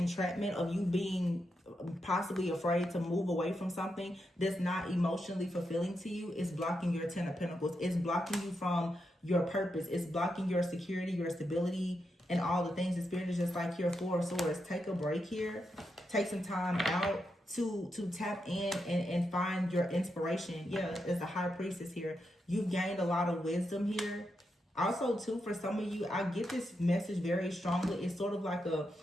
of you being possibly afraid to move away from something that's not emotionally fulfilling to you, is blocking your Ten of Pentacles. It's blocking you from your purpose. It's blocking your security, your stability, and all the things. The Spirit is just like here, Four of Swords. Take a break here. Take some time out to tap in and find your inspiration. Yeah, there's a High Priestess here. You've gained a lot of wisdom here. Also, too, for some of you, I get this message very strongly. It's sort of like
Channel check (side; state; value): both; normal; correlation 0.85